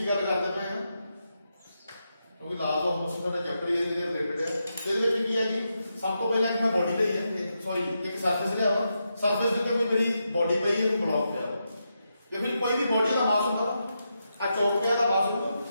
ਗੱਲ ਕਰਦੇ ਪਏ ਹਾਂ ਕਿਉਂਕਿ ਲਾਜ਼ ਆਫ ਮੋਸ਼ਨ ਦਾ ਚੈਪਟਰ ਇਹਦੇ ਰਿਲੇਟਡ ਹੈ ਇਹਦੇ ਵਿੱਚ ਕੀ ਹੈ ਜੀ ਸਭ ਤੋਂ ਪਹਿਲਾਂ ਇੱਕ ਮੈਂ ਬੋਡੀ ਲਈ ਹੈ ਸੌਰੀ ਇੱਕ ਸਰਫੇਸ ਲਿਆ ਵਾ ਸਰਫੇਸ ਦੇ ਉੱਤੇ ਕੋਈ ਮੇਰੀ ਬੋਡੀ ਪਈ ਹੈ ਬਲੌਕ ਪਿਆ ਵਾ ਜੇ ਫਿਰ ਕੋਈ ਵੀ ਬੋਡੀ ਦਾ ਮਾਸ ਹੁੰਦਾ ਆ ਚੌਕ ਪਿਆ ਦਾ ਮਾਸ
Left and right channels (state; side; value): inverted; both; correlation -0.85